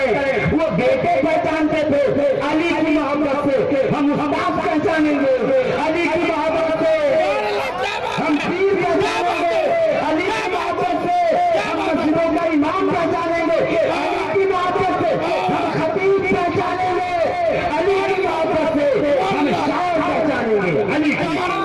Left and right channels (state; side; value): identical; both; correlation 1.00